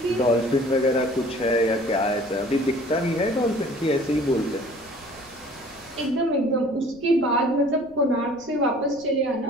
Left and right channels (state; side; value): noise; right; rumble, 26 dB below the sound